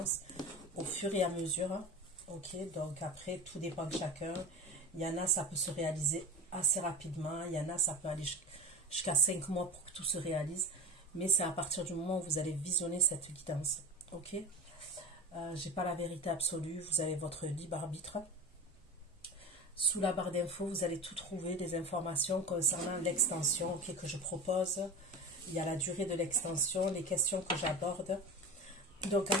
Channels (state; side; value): normal; both; correlation 0.30